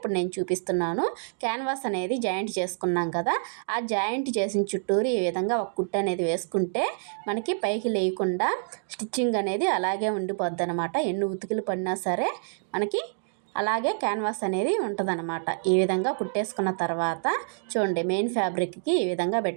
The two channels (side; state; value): left; silent; digital silence